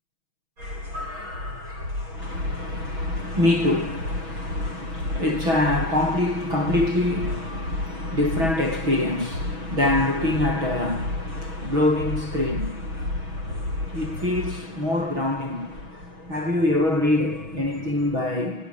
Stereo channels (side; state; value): left; late; 6.2 ms